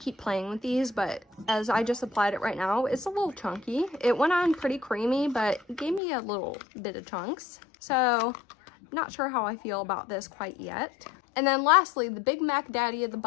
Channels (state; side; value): drops out; right; at 6.0 s